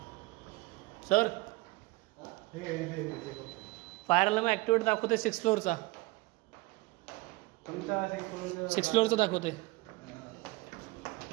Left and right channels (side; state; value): left; quieter; 22.1 dB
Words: सर. फायर अलार्म ऍक्टिवेट दाखवते 6th फ्लोअरचा. 6th फ्लोअरचा दाखवते.